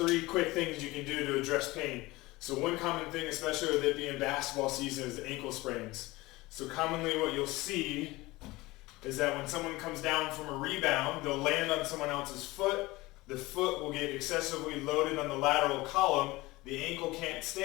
quick things you can do to address pain. So one common thing, especially with it being basketball season, is ankle sprains. So commonly what you'll see is that when someone comes down from a rebound, they'll land on someone else's foot. The foot will get excessively loaded on the lateral column. The ankle can't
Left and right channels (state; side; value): quieter; right; 20.6 dB